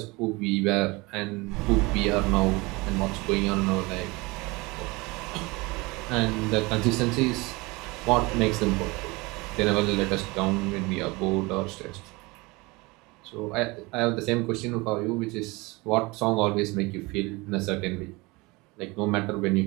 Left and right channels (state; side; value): quieter; left; 24.3 dB